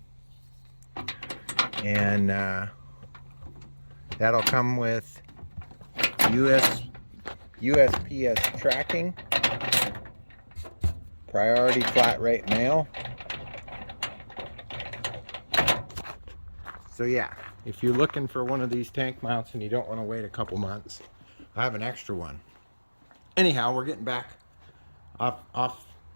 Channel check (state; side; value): inverted; both; correlation -1.00